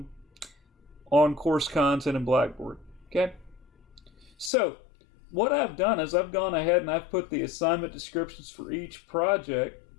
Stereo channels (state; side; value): drops out; right; at 4.5 s